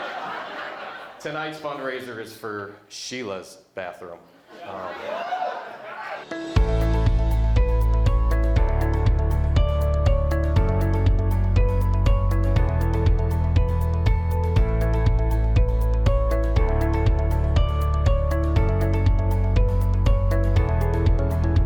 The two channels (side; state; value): both; identical; correlation 1.00